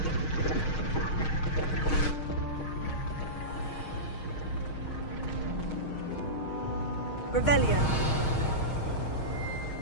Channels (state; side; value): late; right; 6.4 ms